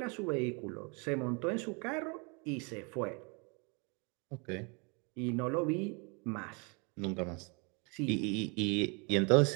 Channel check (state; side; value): quieter; left; 32.3 dB